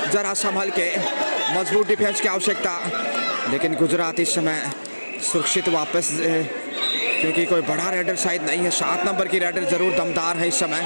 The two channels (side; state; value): both; inverted; correlation -1.00